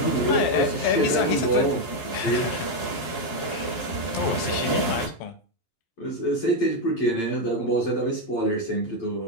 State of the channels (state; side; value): late; right; 12 ms